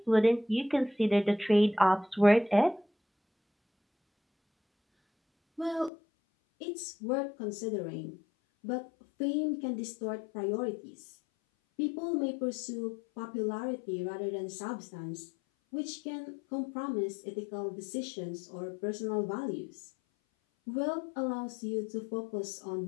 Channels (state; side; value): drops out; right; at 5.9 s